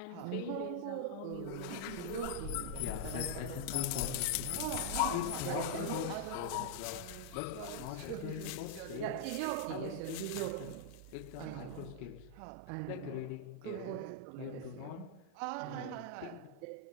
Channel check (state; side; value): different; both; correlation 0.00